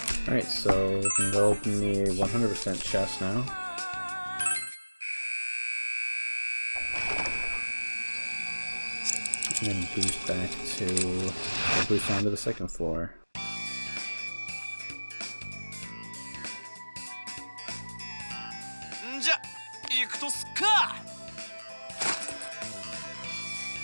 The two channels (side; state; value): both; inverted; correlation -1.00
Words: Alright, so we can go open the 100% chest now. And then boost back to, or boost down to the second floor.